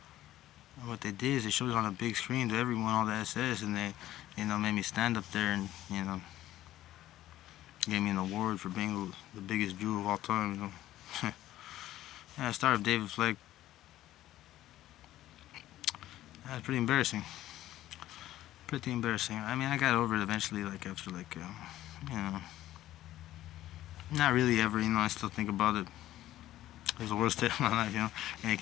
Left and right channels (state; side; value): quieter; right; 14.2 dB